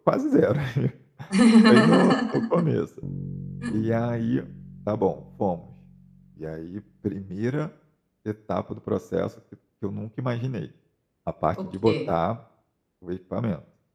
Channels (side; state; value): both; identical; correlation 1.00